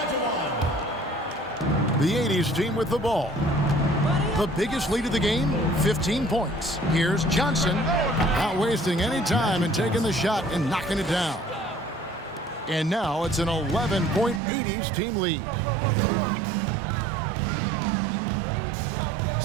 The 80's team with the ball. The biggest lead of the game, 15 points. Here's Johnson, not wasting any time and taking the shot and knocking it down. And now it's an 11-point 80's team lead.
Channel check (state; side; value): drops out; left; at 14.4 s